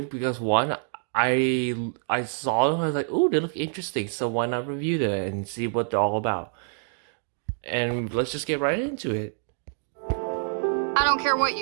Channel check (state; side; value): silent; left; digital silence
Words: because one, I saw them, I was like, oh, they look interesting, so why not review them and see what they're all about. And let's just get right into it. I don't care what